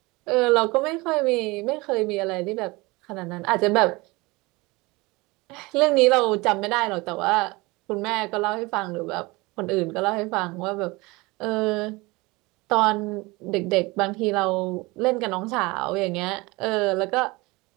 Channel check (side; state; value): left; quieter; 23.6 dB